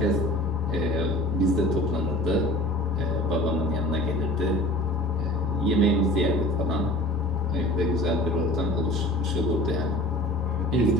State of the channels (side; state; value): both; normal; correlation 0.43